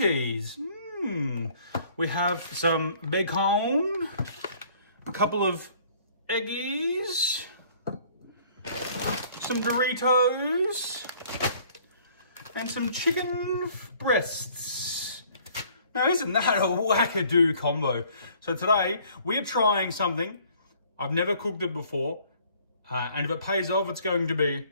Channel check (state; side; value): inverted; both; correlation -0.57